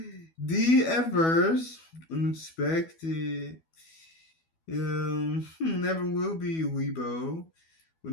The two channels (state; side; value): late; right; 12 ms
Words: the adverse, unexpected, never will be Weibo, will